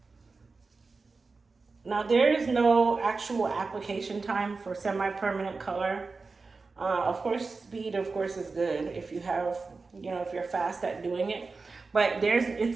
Now there is no actual application time for semi-permanent color. Of course, speed of course is good if you have, if you're fast at doing it, but it's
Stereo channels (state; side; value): quieter; left; 4.1 dB